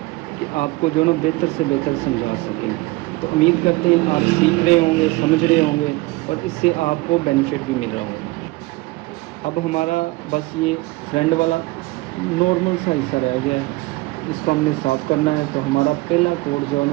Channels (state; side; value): quieter; left; 22.0 dB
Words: कि आपको जो ना बेहतर से बेहतर समझा सकें। तो उम्मीद करते हैं आप सीख रहे होंगे, समझ रहे होंगे और इससे आपको बेनिफिट भी मिल रहा होगा। अब हमारा बस ये फ्रंट वाला नॉर्मल सा हिस्सा रह गया है, इसको हमने साफ़ करना है। तो हमारा पहला कोट जो है